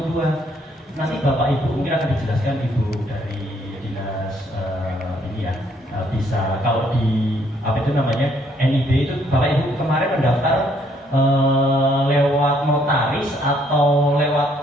Nanti Bapak Ibu mungkin akan dijelaskan Ibu dari bisa kalau di apa itu namanya NIB itu Bapak Ibu kemarin mendaftar lewat notaris atau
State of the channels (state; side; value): normal; both; correlation 0.67